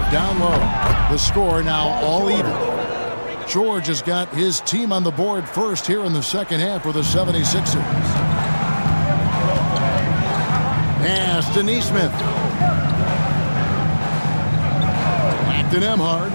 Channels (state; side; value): inverted; both; correlation -1.00